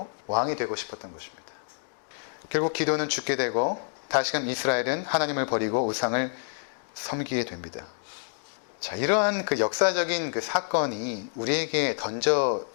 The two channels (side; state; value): right; silent; digital silence